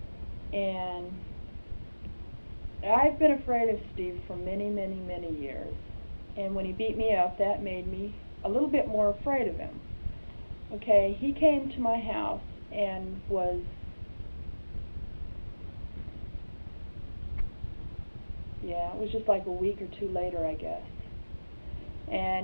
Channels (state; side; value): inverted; both; correlation -1.00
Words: And I've been afraid of Steve for many, many, many years. And when he beat me up, that made me a little bit more afraid of him. Okay, he came to my house and was, it was just like a week or two later, I guess.